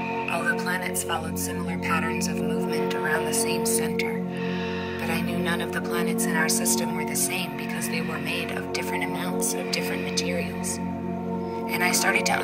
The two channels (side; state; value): both; identical; correlation 1.00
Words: All the planets followed similar patterns of movement around the same center, but I knew none of the planets in our system were the same because they were made of different amounts of different materials. And I started to